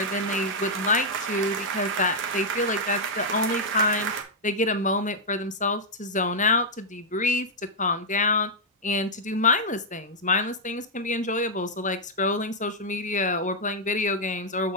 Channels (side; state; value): both; normal; correlation -0.06